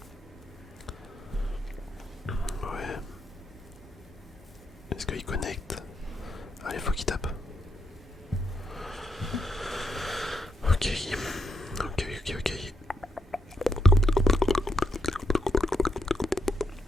Ouais. Est-ce qu'il connecte? Allez, faut qu'il tape. Ok. Ok, ok, ok.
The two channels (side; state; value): both; normal; correlation 0.80